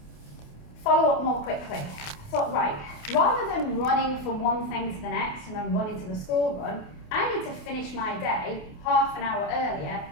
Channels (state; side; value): late; right; 28 ms